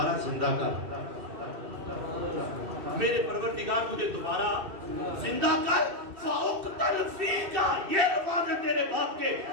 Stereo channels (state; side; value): late; left; 2.6 ms